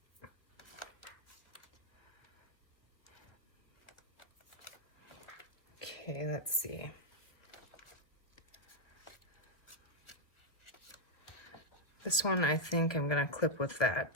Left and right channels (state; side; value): late; right; 1.4 ms